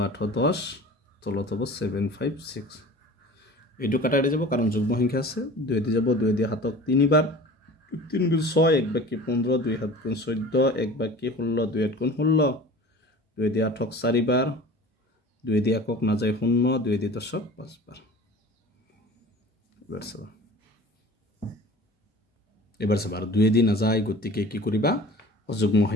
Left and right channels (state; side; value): normal; both; correlation 0.41